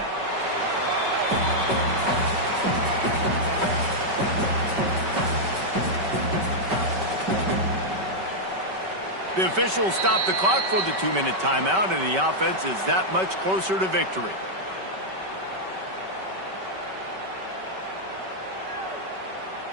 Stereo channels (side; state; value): left; late; 5.2 ms